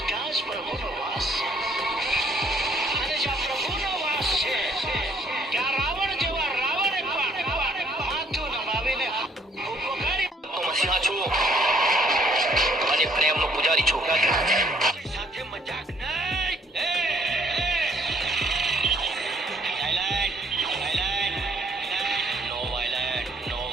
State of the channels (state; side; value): normal; both; correlation 0.64